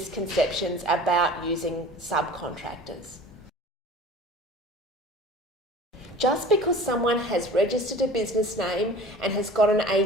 about using subcontractors. Just because someone has registered a business name and has got an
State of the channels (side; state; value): both; normal; correlation 0.42